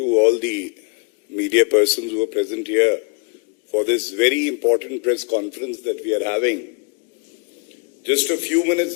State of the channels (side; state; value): right; quieter; 33.8 dB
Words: all the media persons who are present here for this very important press conference that we are having. Just a few minutes